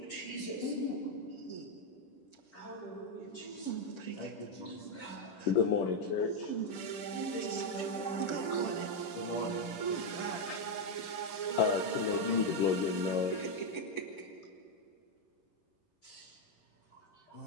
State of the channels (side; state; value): right; late; 10 ms